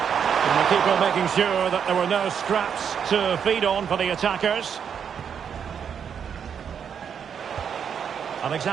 And the keeper making sure that there were no scraps to feed on for the attackers.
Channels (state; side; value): quieter; left; 7.6 dB